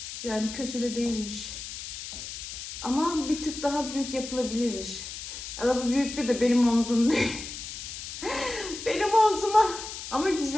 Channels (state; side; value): noise; left; hiss, 9 dB below the sound